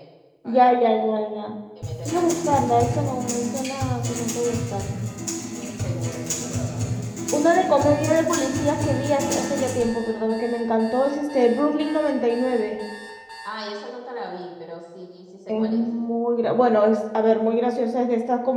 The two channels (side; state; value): both; identical; correlation 1.00